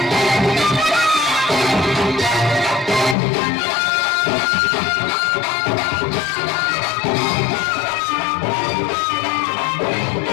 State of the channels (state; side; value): drops out; right; at 3.2 s